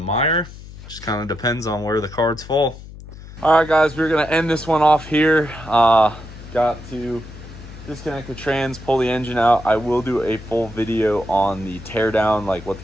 Just kind of depends on where the cards fall. All right, guys, we're gonna end this one off here. Got to disconnect the trans, pull the engine out. I will do a full video on the teardown, like what the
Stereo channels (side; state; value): left; noise; hum, 15 dB below the sound